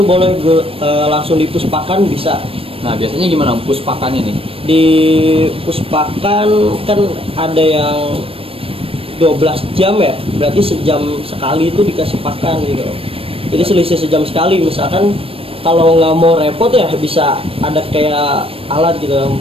boleh langsung dipuspakan bisa. Nah, biasanya gimana, Om, puspakannya nih? Di puspakan kan ada yang 12 jam ya, berarti sejam sekali itu dikasih pakan gitu. Jadi selisih sejam sekali. Misalkan kalau nggak mau repot ya bisa ada kayak alat gitu,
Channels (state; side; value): late; left; 0.27 ms